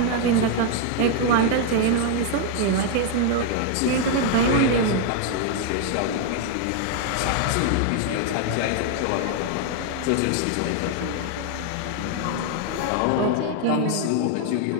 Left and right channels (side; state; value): both; different; correlation 0.00